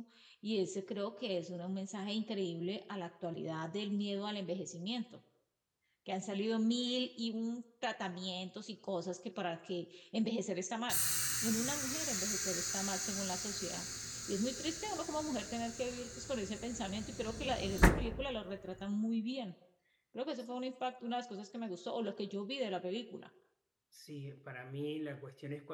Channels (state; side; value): identical; both; correlation 1.00